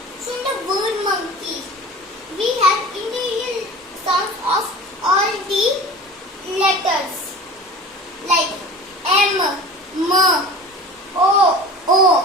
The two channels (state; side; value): normal; both; correlation 0.38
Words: So in the word monkey, we have individual sounds of all the letters like M, M, O,